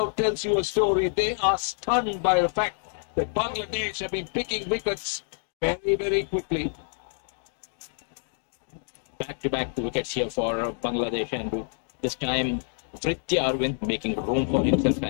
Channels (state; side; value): silent; right; digital silence